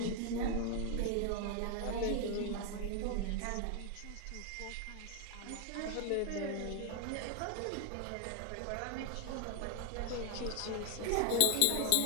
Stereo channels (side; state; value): both; different; correlation 0.00